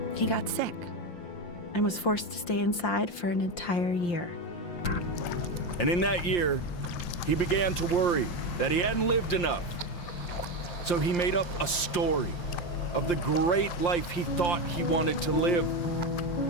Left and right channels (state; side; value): late; right; 5.7 ms